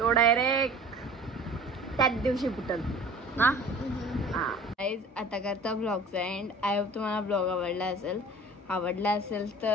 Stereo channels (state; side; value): normal; both; correlation 0.44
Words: डायरेक्ट त्याच दिवशी फुटल ना. गाइस आता करता ब्लॉगचा एंड. आय होप तुम्हाला ब्लॉग आवडला असेल